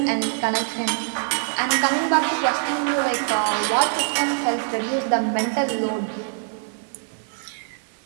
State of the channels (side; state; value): left; silent; 58 dB below the other